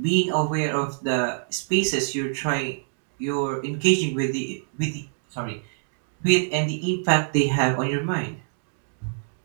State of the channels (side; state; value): left; silent; digital silence